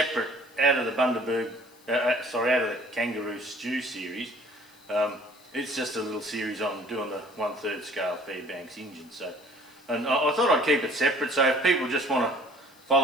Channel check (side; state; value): left; noise; hiss, 28 dB below the sound